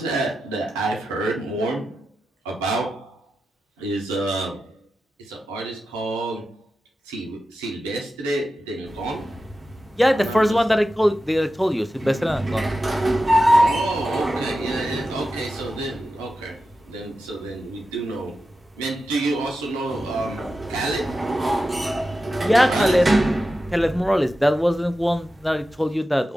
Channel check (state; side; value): normal; both; correlation 0.91